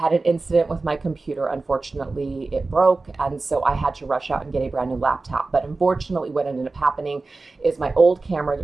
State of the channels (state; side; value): quieter; left; 3.6 dB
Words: an incident with my computer. Unfortunately, it broke, and so I had to rush out and get a brand new laptop. But unfortunately, what ended up happening is my old camera